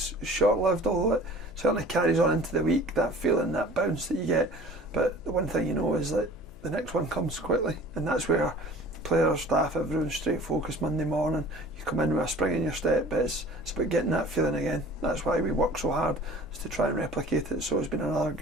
short-lived, although it certainly carries on into the week, that feeling, that bounce that you get. But the one thing you know is that the next one comes quickly, and that's where players, staff, everyone's straight focused Monday morning. You come in with a spring in your step, but it's about getting that feeling again. That's why we work so hard, is to try and replicate it. So it's been another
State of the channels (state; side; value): noise; left; hum, 22 dB below the sound